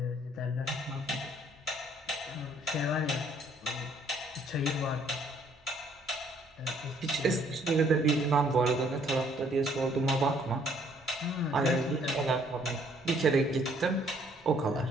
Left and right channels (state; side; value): normal; both; correlation 0.63